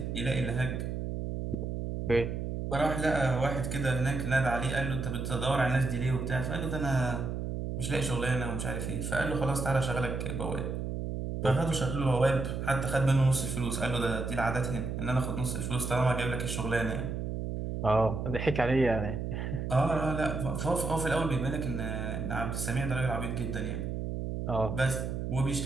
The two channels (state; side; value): noise; right; hum, 3 dB below the sound